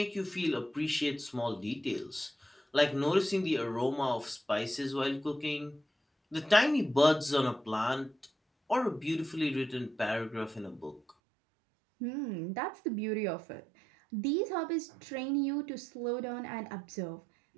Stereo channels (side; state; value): left; drops out; at 11.2 s